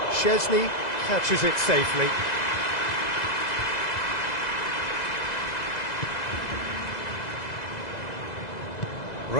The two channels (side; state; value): right; late; 2.0 ms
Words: Szczesny catches it safely.